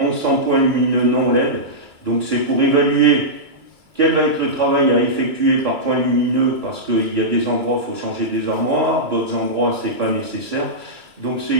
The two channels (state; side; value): late; left; 2.6 ms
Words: 1100 points lumineux non LED. Donc c'est pour évaluer quel va être le travail à effectuer par point lumineux, parce qu'il y a des endroits, il faut changer des armoires, d'autres endroits, ce n'est pas nécessaire. Donc c'est